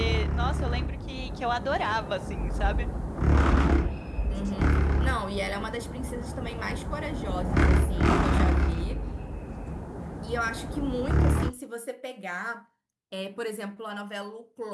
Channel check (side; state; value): both; identical; correlation 1.00